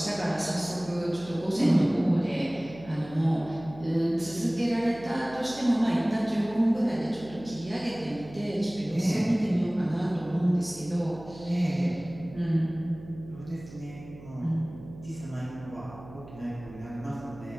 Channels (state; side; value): noise; right; hum, 17 dB below the sound